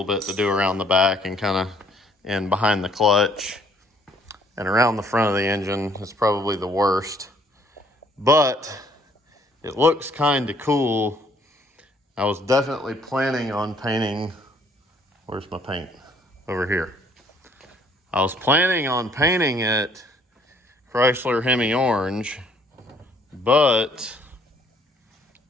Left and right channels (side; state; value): both; normal; correlation 0.63